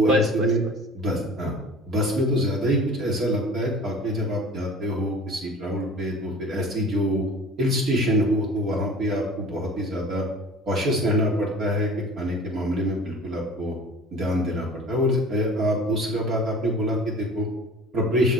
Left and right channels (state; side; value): normal; both; correlation 0.43